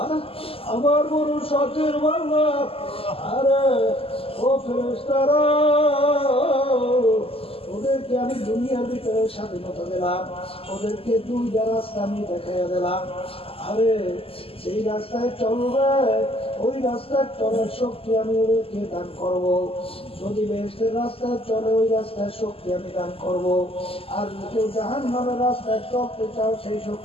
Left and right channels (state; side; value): late; right; 0.27 ms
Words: আমার বড় শখের বাংলা, আরে ও ফেরেশতারা, ওদেরকে আমি দুনিয়ার ভিতরে স্বাধীনতা দিলাম, ওদেরকে দুইটা রাস্তা আমি দেখাইয়া দিলাম। আরে সেই রাস্তায় চলবে, ওই রাস্তায় চলার শক্তি আমি ওদেরকে দান করব। যদি বেহেশতের রাস্তায় চলে ওই রাস্তায় শক্তি আমি দান করব। আর কেউ জাহান্নামের রাস্তায় চলতে চাও সেই